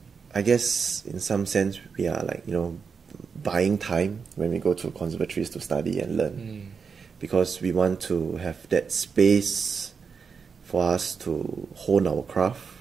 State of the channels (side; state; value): left; quieter; 5.7 dB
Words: I guess in some sense we are like, you know, buying time when we go to conservatories to study and learn, because we want to have that space for us to hone our craft,